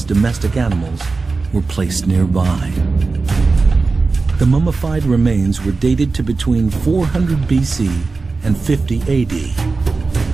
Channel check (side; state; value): left; quieter; 4.0 dB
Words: domestic animals were placed nearby. The mummified remains were dated to between 400 BC and 50 AD.